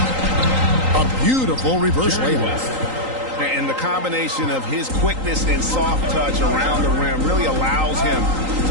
A beautiful reverse layup. And the combination of his quickness and soft touch around the rim really allows him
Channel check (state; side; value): late; left; 3.8 ms